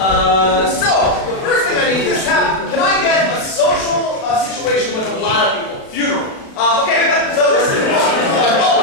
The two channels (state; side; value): late; right; 36 ms